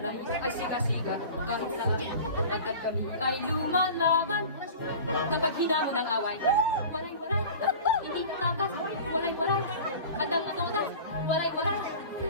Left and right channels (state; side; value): inverted; both; correlation -0.38